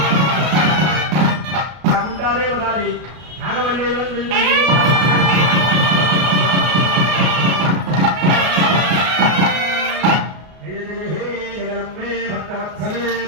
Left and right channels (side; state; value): left; late; 33 ms